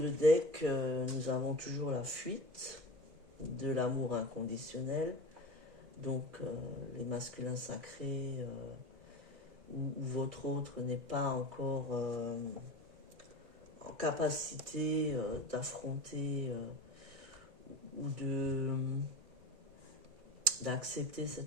deck, nous avons toujours la fuite de l'amour inconditionnel. Donc, les masculins sacrés ou votre autre n'est pas encore en capacité d'affronter ou d'accepter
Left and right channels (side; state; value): left; late; 2.3 ms